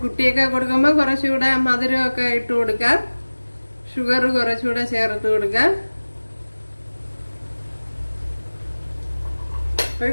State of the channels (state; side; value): inverted; both; correlation -1.00